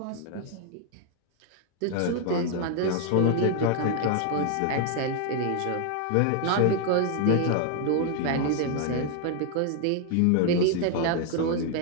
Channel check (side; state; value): both; different; correlation 0.00